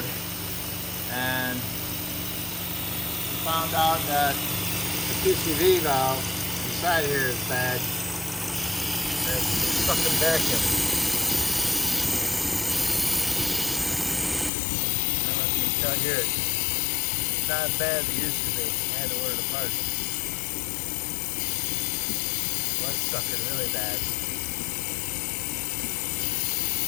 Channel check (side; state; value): right; drops out; at 14.5 s